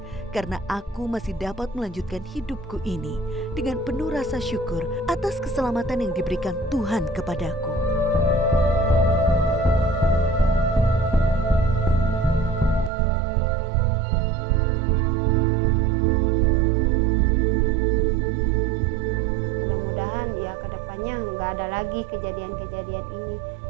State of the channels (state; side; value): drops out; left; at 12.9 s